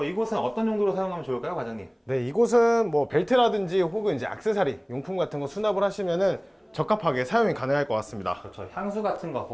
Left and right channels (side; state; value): both; identical; correlation 1.00